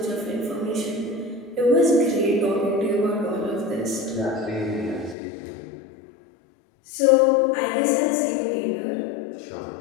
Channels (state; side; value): drops out; right; at 5.2 s